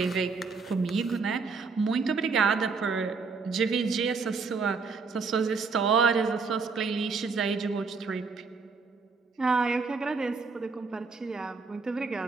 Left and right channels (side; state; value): left; quieter; 4.7 dB